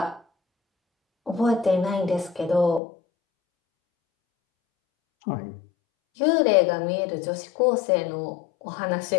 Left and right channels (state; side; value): drops out; right; at 2.8 s